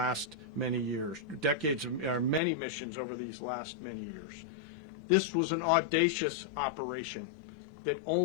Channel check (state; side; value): drops out; right; at 2.4 s